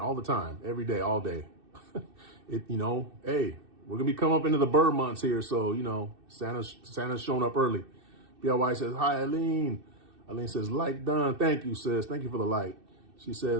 the time, every day, all day. Hey, we're gonna be coming up into the bird months here, so Santa's showing up early. BLY says, hi, Eileen. Eileen says, like done. Thank you, sis. Thank you for the like. She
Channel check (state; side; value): late; left; 2.6 ms